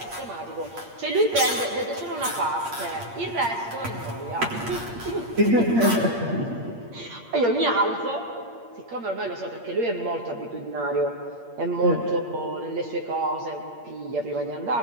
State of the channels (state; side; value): late; left; 8.6 ms